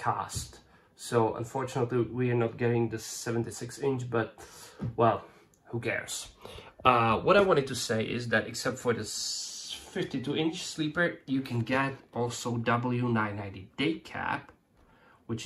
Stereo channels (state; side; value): identical; both; correlation 1.00